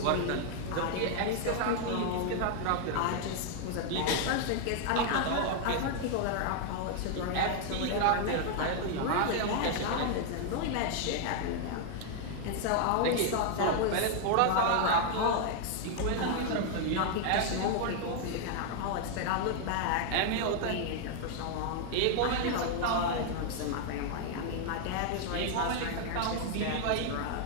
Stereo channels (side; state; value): both; different; correlation 0.00